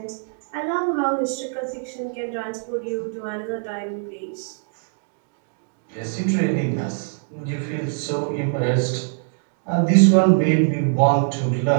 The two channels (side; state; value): left; silent; 59 dB below the other